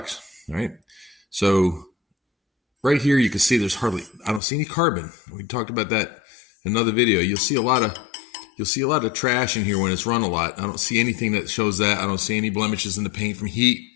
right? So right here you can see there's hardly, I don't see any carbon. We talked about that in another video. You'll see a lot of trash in here when it's run a lot. I don't see anything that shows that. I don't see any blemishes in the paint from heat.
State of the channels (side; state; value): right; drops out; at 4.4 s